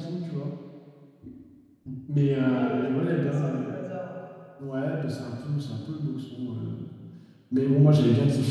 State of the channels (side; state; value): both; identical; correlation 1.00